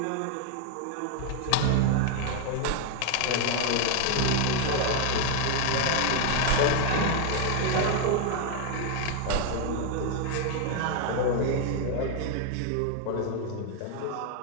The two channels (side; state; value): both; different; correlation 0.00